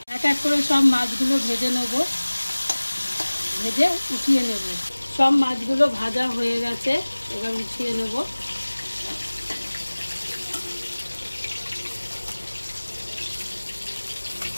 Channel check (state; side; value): inverted; both; correlation -1.00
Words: এক এক করে সব মাছগুলো ভেজে নেব, ভেজে উঠিয়ে নেব। সব মাছগুলো ভাজা হয়ে গেছে, এবার উঠিয়ে নেব।